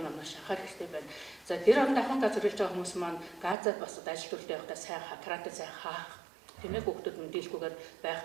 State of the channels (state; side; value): drops out; left; at 3.6 s